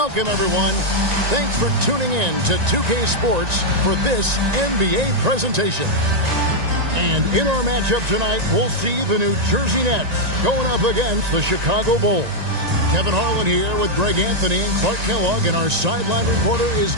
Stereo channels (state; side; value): late; left; 1.9 ms